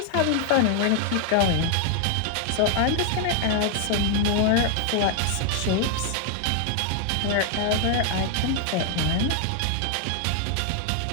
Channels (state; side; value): different; both; correlation 0.00